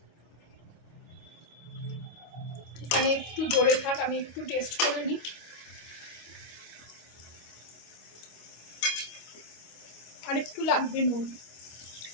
এখানে একটু জোরে থাক, আমি একটু টেস্ট করে নিই। আর একটু লাগবে নুন,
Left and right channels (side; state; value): right; late; 25 ms